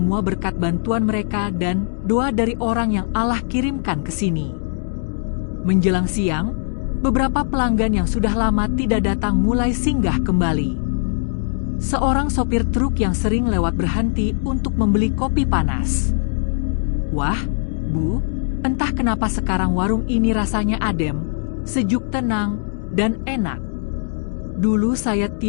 berkat bantuan mereka dan doa dari orang yang Allah kirimkan ke sini. Menjelang siang, beberapa pelanggan yang sudah lama tidak datang mulai singgah kembali. Seorang sopir truk yang sering lewat berhenti untuk membeli kopi panas. Wah, Bu, entah kenapa sekarang warung ini rasanya adem, sejuk, tenang, dan enak. Dulu saya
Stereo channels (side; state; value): right; silent; digital silence